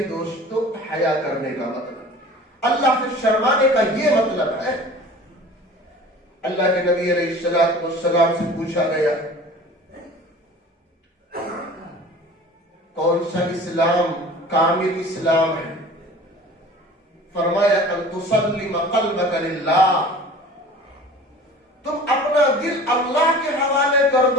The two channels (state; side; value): normal; both; correlation 0.43